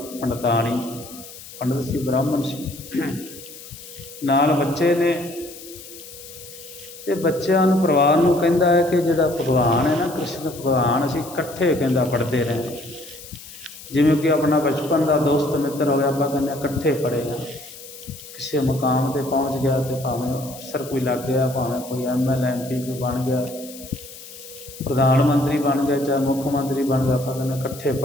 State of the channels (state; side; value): noise; left; hiss, 16 dB below the sound